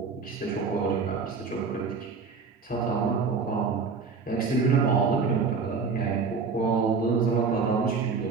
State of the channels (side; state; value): left; quieter; 5.0 dB